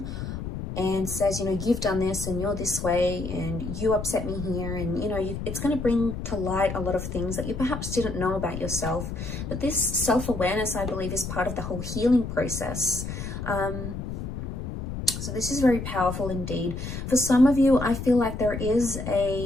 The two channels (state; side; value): noise; left; rumble, 6 dB below the sound